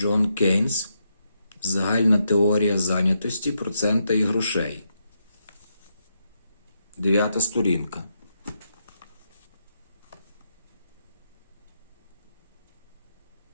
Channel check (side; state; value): both; inverted; correlation -0.81